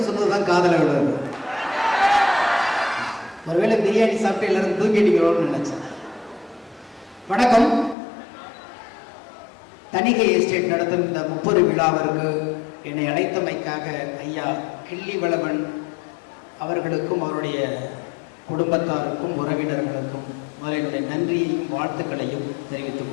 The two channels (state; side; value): drops out; right; at 8.0 s